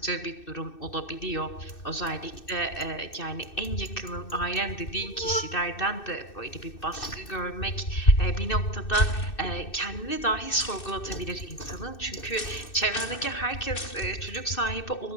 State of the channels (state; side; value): late; right; 2.6 ms